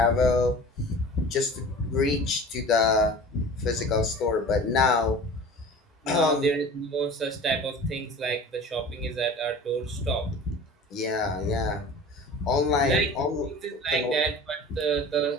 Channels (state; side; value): normal; both; correlation 0.40